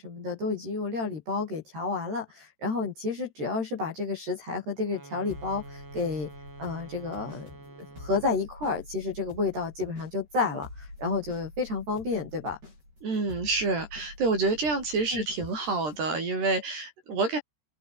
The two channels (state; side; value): late; left; 13 ms